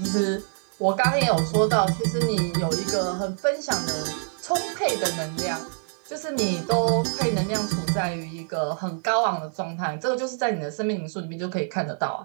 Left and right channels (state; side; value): silent; left; 61 dB below the other